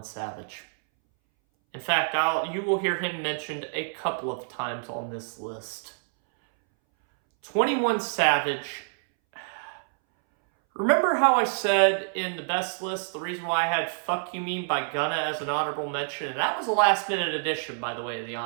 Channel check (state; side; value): silent; left; 60 dB below the other